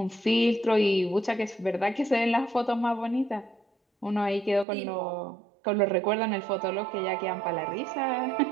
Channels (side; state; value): left; drops out; at 4.7 s